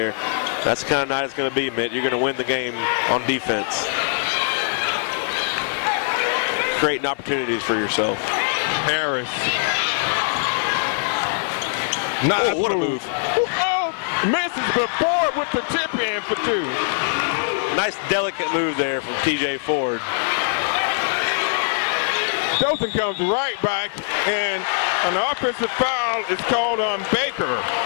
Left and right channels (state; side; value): silent; right; 64 dB below the other